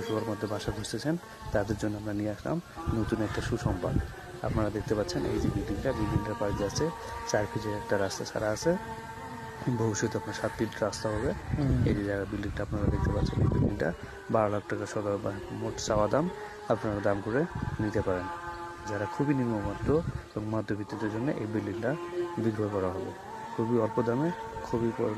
মধ্যে বাসা খুঁজতেছেন তাদের জন্য আমরা নিয়ে আসলাম নতুন একটা সুসংবাদ। আপনারা দেখতে পাচ্ছেন এই যে বিল্ডিংটার পাশ দিয়ে আছে 4 ফিটের একটা রাস্তা ছাড়া আছে। ভবিষ্যতে আপনার 7 ফিট রাস্তা হবে। এই যে জায়গা বিল্ডিংটা আপনারা দেখতে পাচ্ছেন, এই বিল্ডিংটা 12 লাখ টাকা সদর মোট চাওয়া দাম, আপনারা দাম করে নিতে পারেন। যারা খুবই নিম্নমধ্য এবং মধ্যবিত্তদের জন্য এই বিল্ডিংটা বিক্রয় করা হবে খুবই অল্প দামে, খুবই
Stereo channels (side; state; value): both; identical; correlation 1.00